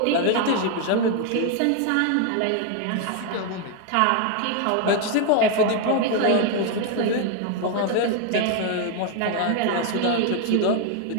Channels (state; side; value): different; both; correlation 0.01